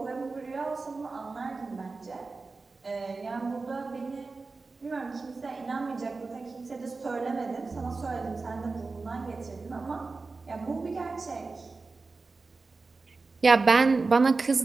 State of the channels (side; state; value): left; quieter; 3.9 dB